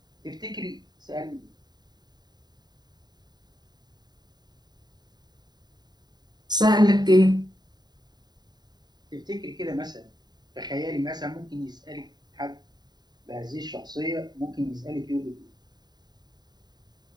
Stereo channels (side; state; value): left; late; 0.20 ms